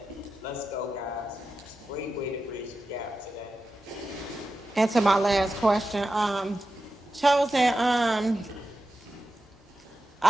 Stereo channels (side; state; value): both; normal; correlation 0.91